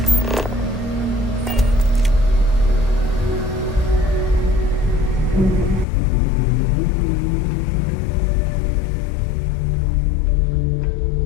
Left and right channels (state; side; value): drops out; right; at 5.9 s